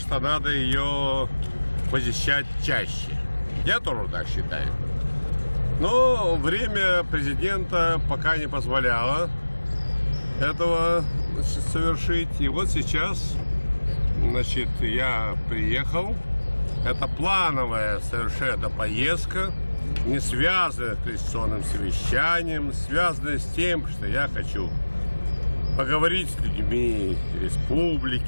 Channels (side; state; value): both; inverted; correlation -1.00